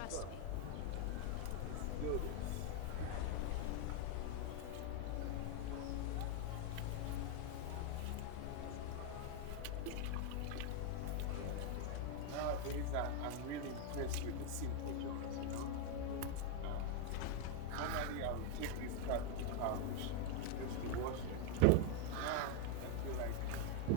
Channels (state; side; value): different; both; correlation 0.00